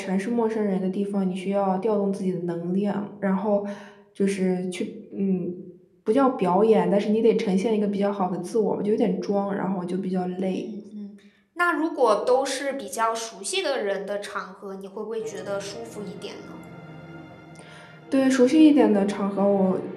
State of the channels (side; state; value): both; identical; correlation 1.00